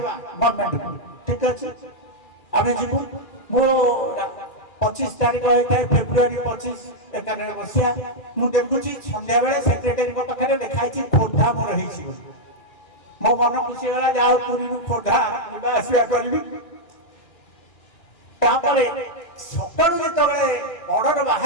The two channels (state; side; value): late; right; 2.4 ms